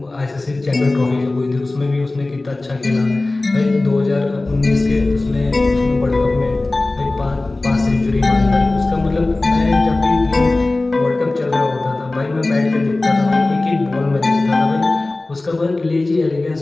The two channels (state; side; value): quieter; right; 3.0 dB